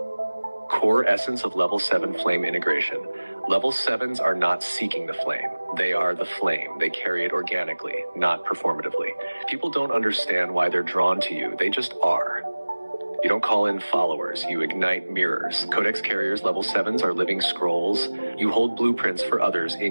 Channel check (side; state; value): both; inverted; correlation -1.00